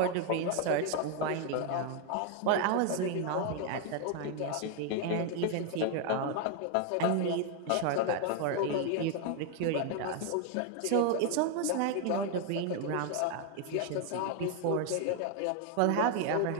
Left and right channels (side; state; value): both; different; correlation 0.00